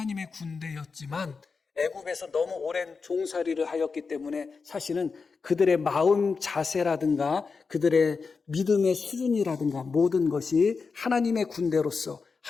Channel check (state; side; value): quieter; right; 4.9 dB